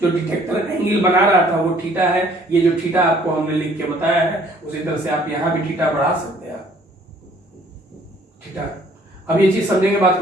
जो डिटेक्टर एंगल बना रहा था वो थीटा है। ये जो थीटा आपको हमने लिख के बताया है उसी तरह से आप यहां भी थीटा बढ़ा सकते हैं, थीटा। अब ये चीज समझेंगे बात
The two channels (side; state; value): both; normal; correlation 0.59